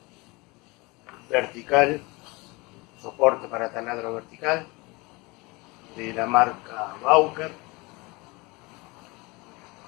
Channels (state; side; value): quieter; right; 25.2 dB